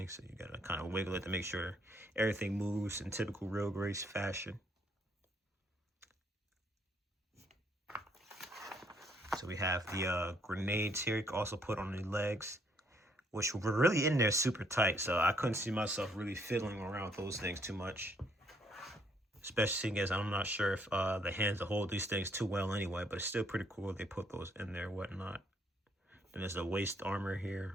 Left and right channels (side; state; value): both; normal; correlation 0.68